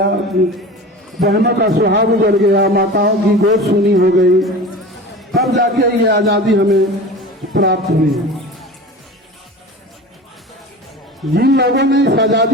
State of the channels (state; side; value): normal; both; correlation 0.34